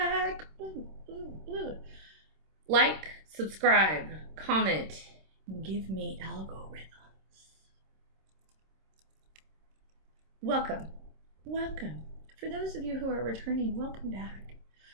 Like, subscribe, comment, give me algorithms. Welcome. For those of you who are returning, welcome back.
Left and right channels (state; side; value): late; left; 26 ms